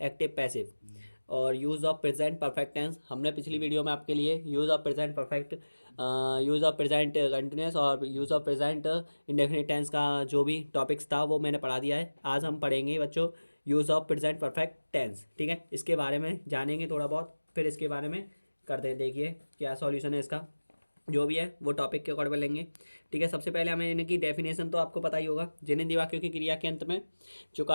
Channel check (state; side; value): inverted; both; correlation -1.00